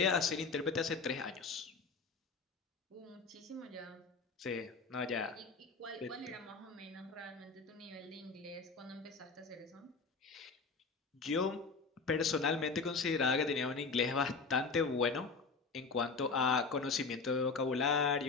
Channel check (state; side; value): quieter; right; 4.5 dB